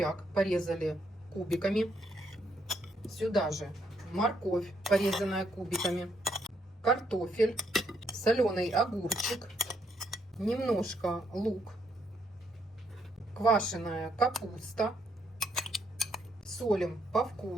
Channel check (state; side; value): normal; both; correlation 0.73